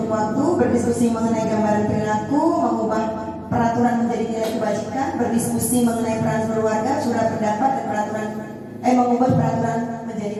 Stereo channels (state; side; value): identical; both; correlation 1.00